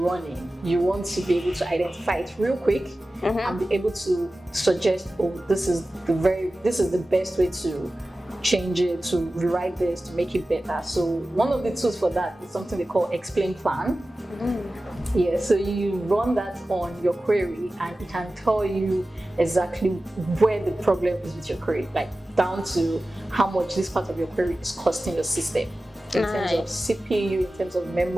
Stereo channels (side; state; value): both; normal; correlation 0.95